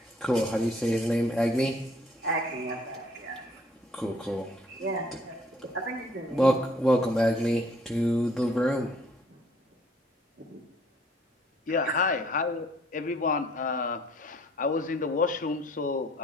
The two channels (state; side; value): normal; both; correlation 0.60